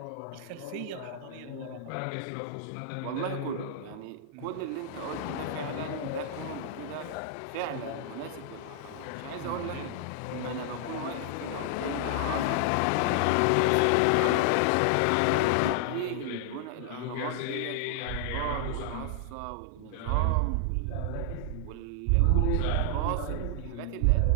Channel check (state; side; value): different; both; correlation -0.01